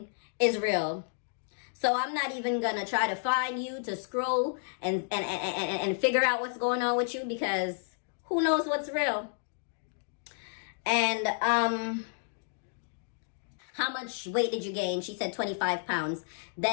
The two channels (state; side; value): silent; right; digital silence